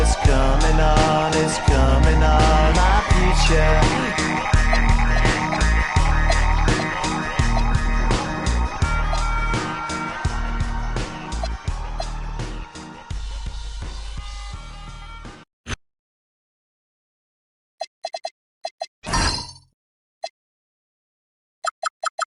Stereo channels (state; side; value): identical; both; correlation 1.00